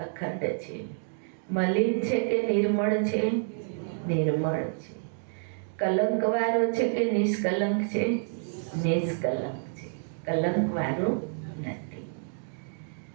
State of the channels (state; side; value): silent; left; 59 dB below the other